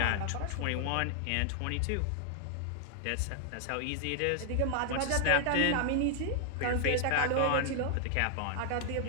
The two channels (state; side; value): different; both; correlation 0.00